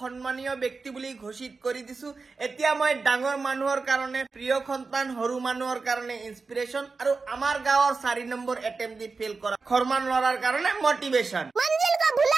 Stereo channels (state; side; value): quieter; left; 4.3 dB